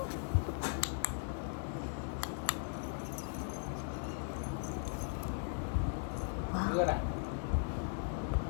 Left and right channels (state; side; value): silent; right; digital silence